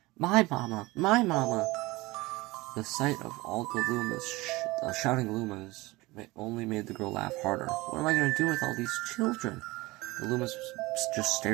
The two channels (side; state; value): left; quieter; 21.3 dB